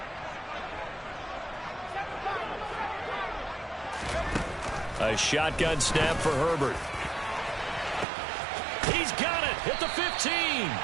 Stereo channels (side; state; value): left; drops out; at 8.1 s